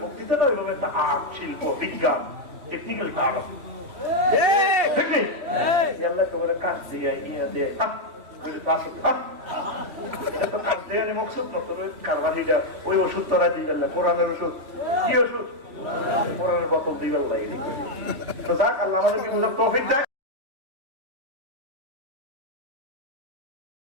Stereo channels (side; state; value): left; late; 3.1 ms